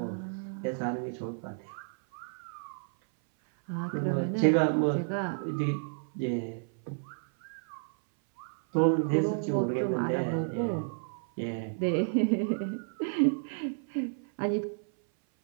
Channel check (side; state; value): left; silent; 57 dB below the other